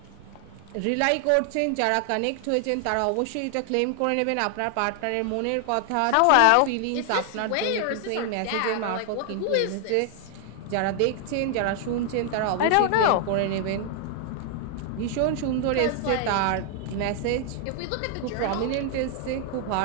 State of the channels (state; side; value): different; both; correlation 0.00